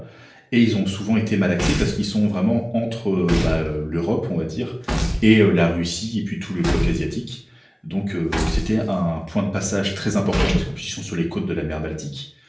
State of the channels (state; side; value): identical; both; correlation 1.00